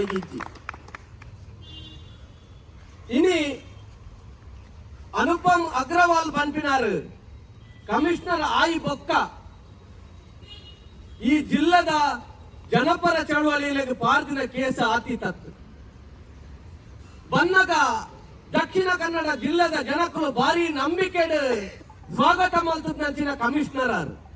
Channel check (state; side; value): identical; both; correlation 1.00